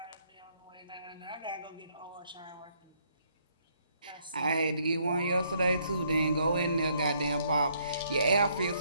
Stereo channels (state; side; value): inverted; both; correlation -0.70